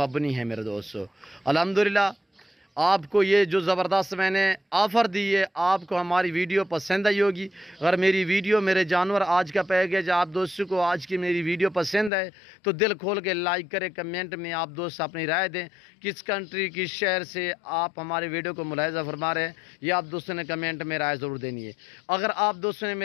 ہے میرے دوستو۔ الحمدللہ آپ کو یہ جو زبردست میں نے آفر دی ہے، آپ کو ہماری ویڈیو پسند آئی ہوگی۔ اگر میری ویڈیو، میرے جانور آج کا پیکیج آپ دوستوں کو آج کی میری ویڈیو پسند ہے تو دل کھول کے لائک کریں، کمنٹ میں آپ دوست اپنی رائے دیں، کس کنٹری کس شہر سے آپ ہمارے ویڈیو کو ملاحظہ فرما رہے ہیں، یہ آپ دوستوں نے کمنٹ میں رائے ضرور دینی ہے۔ اگر آپ دوستوں نے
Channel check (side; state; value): right; drops out; at 12.1 s